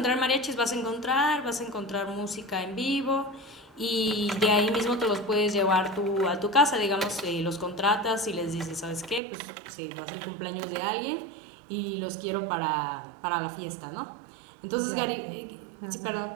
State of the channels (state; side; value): drops out; left; at 9.2 s